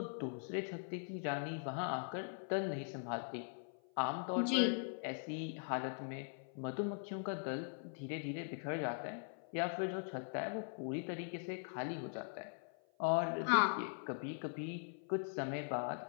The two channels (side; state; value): right; silent; 50 dB below the other